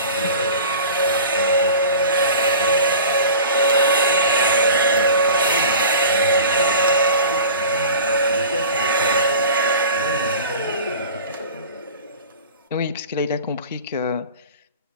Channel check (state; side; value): inverted; both; correlation -0.40